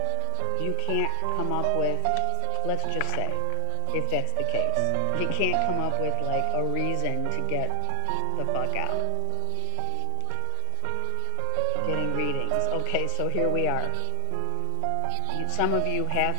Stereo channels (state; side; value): different; both; correlation 0.00